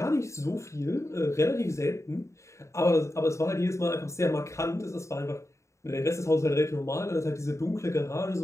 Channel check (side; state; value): right; late; 0.14 ms